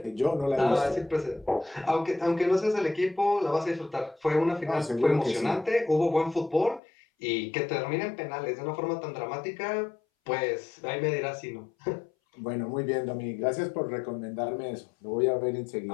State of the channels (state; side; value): drops out; right; at 6.8 s